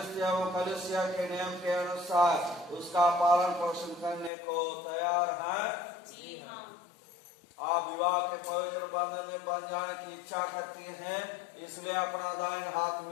एवं कलीसिया के नियम के अनुसार उसका पालन पोषण करने को तैयार हैं? जी हाँ। आप विवाह के पवित्र बंधन में बंध जाने की इच्छा करती हैं, इसलिए अपना दाहिना हाथ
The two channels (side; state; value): right; drops out; at 4.3 s